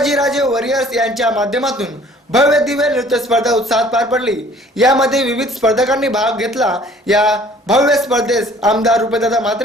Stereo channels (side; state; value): both; normal; correlation 0.54